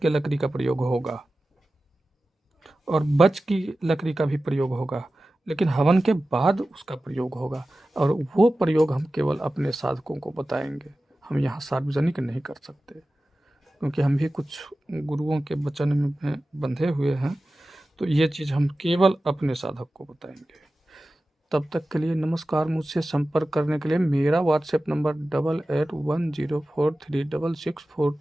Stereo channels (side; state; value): both; normal; correlation 0.95